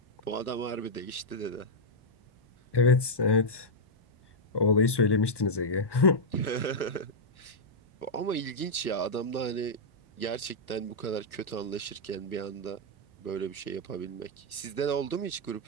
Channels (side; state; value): right; late; 1.2 ms